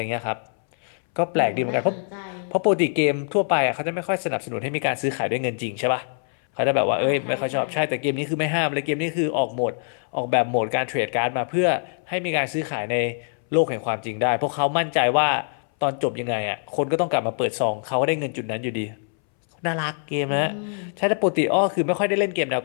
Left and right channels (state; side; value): silent; right; 62 dB below the other